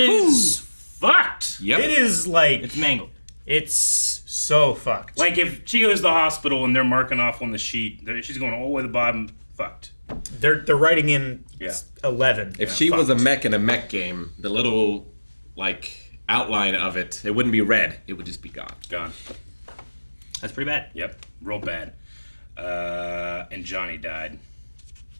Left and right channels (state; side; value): inverted; both; correlation -1.00